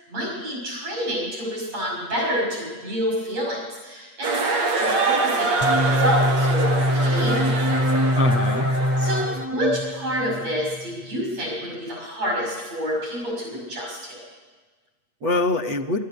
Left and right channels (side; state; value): left; late; 8.4 ms